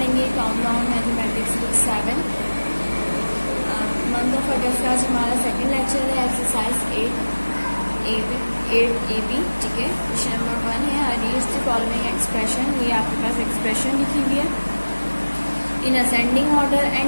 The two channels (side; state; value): both; inverted; correlation -1.00